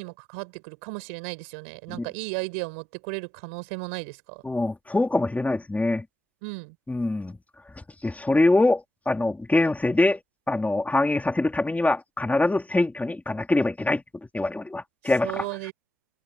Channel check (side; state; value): both; normal; correlation 0.90